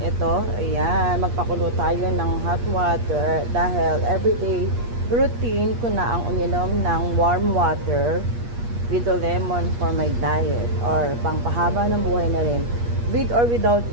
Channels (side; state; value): left; late; 8.4 ms